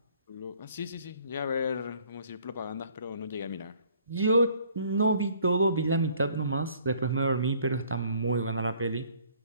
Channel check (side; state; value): both; inverted; correlation -0.58